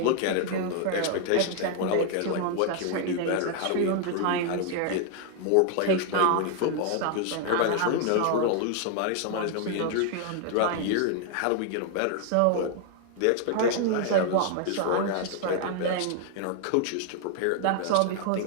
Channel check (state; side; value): different; both; correlation 0.00